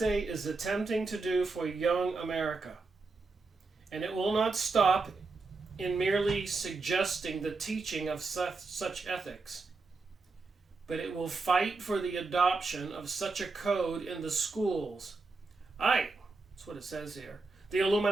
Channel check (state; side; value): quieter; left; 3.9 dB